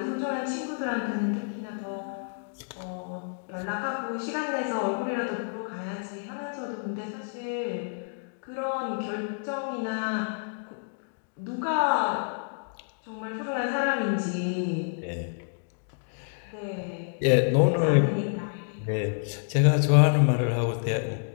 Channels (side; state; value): right; silent; digital silence